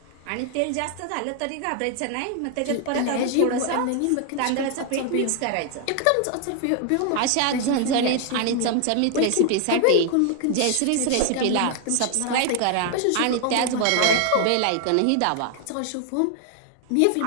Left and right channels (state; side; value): different; both; correlation 0.00